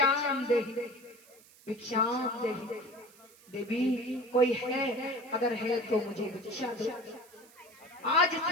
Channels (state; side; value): noise; right; hiss, 25 dB below the sound